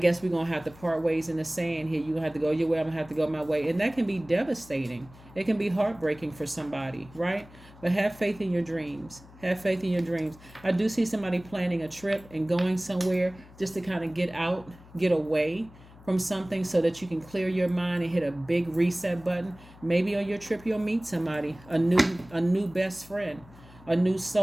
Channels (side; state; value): left; noise; hum, 22 dB below the sound